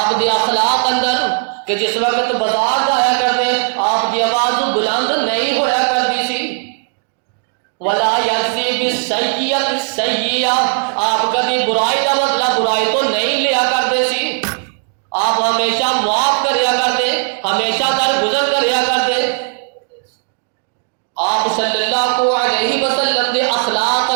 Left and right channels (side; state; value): left; silent; 67 dB below the other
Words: دی اخلاق اندر کہ جس وقت بازار جایا کرتے آپ دی آواز بلند نہیں ہویا کرتی سی۔ ولا یجزی بالسیئۃ السیئۃ، آپ کبھی برائی کا بدلہ برائی تو نہیں لیا کرتے سی، آپ ہمیشہ معاف کریا کرتے، ہمیشہ درگزر کریا کرتے۔ آپ صلی اللہ علیہ وسلم دے اخلاق